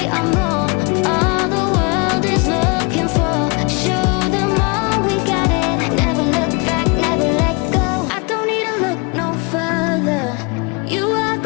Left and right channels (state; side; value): quieter; right; 30.7 dB